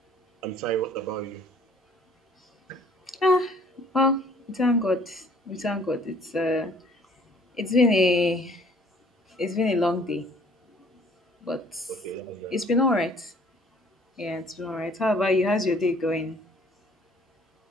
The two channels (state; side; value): normal; both; correlation 0.57